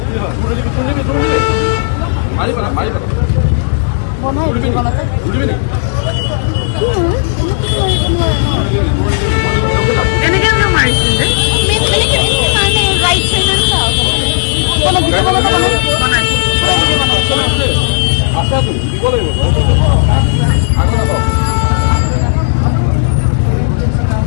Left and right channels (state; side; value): silent; right; digital silence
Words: মাৰি পেলা ধৰিবি নি এনেকে আমরা মারিছি যে মানে রাইট সাইডে যাও কোন ভিডিও বানাইছো আচ্ছা তো দিব লাগিব আগত নাপাও